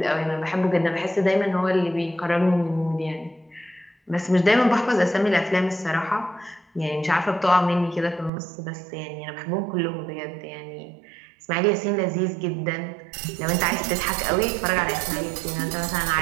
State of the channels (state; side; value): drops out; left; at 8.3 s